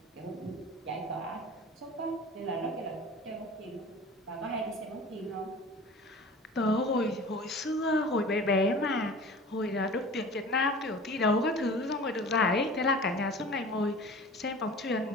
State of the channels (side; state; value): both; normal; correlation 0.40